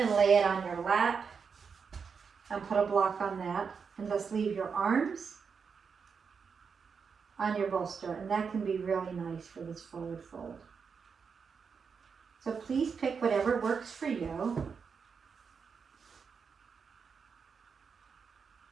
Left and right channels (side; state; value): left; quieter; 5.9 dB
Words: lay it on your lap and put a block on that, and just leave your arms on your bolster, and that can be really nice for this forward fold. So please pick whatever works for you.